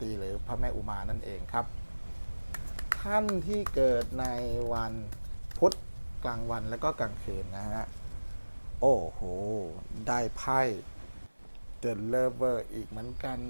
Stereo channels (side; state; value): both; inverted; correlation -1.00